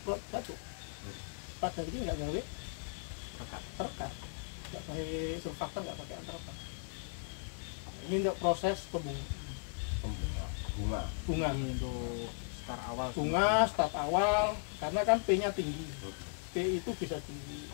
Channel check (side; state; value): right; silent; digital silence